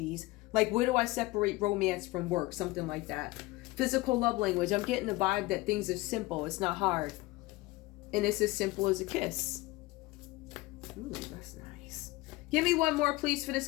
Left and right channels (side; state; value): right; quieter; 20.6 dB